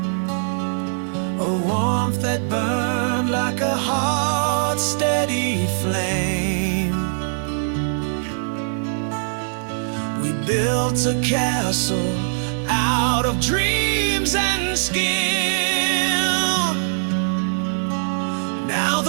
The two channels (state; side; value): silent; left; digital silence